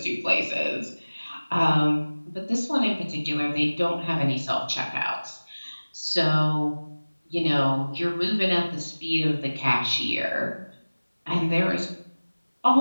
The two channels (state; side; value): inverted; both; correlation -1.00